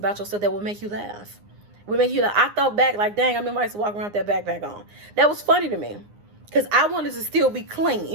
yourself that will make you laugh. I thought back like, dang, I remember I used to walk around with that backpack on. That was funny to me, because I wanted to still be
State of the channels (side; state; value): left; late; 9.7 ms